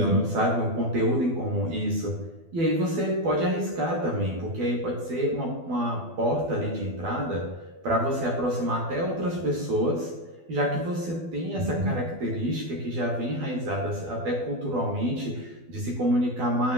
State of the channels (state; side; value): late; left; 12 ms